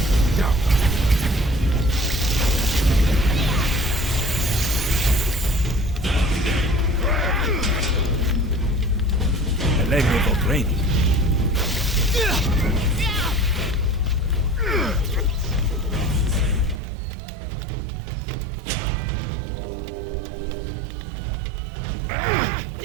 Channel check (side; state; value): left; drops out; at 16.8 s